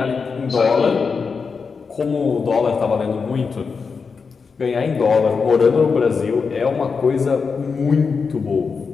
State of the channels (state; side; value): quieter; right; 5.2 dB